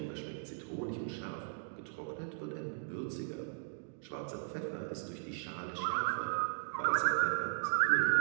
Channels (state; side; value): silent; left; digital silence